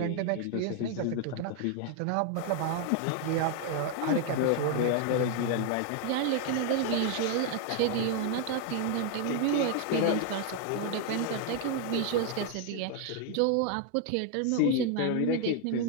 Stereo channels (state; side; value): different; both; correlation 0.00